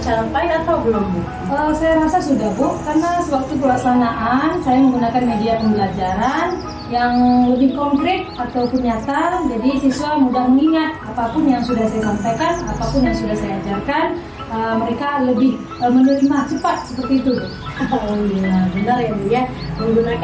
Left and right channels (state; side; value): identical; both; correlation 1.00